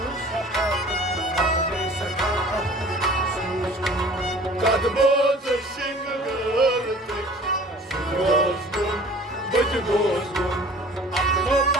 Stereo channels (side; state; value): both; normal; correlation 0.47